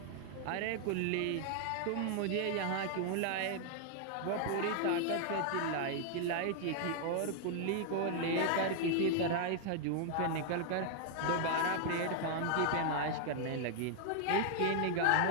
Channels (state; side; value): different; both; correlation 0.00